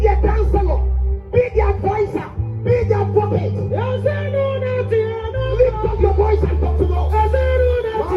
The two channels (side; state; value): both; identical; correlation 1.00